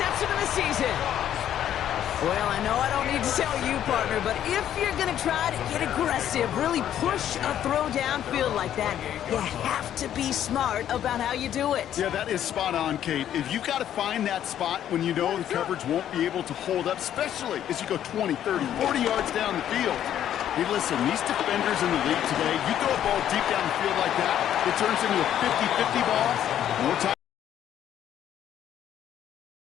of the season. Well, I know I don't need to tell you, partner, but if you're going to try to get aggressive, really push a throw downfield like that, you have to be smart about how you do it. Yeah, that is spot on, Kate. If you've got to find that spot when you know the coverage won't be able to hold up, especially as you go 20, 30, 40 yards down the field. Hey, listen, these defenders in the league today, you throw a ball deep down the field like that, it turns into a 50-50 ball. More time.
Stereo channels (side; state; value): right; quieter; 10.7 dB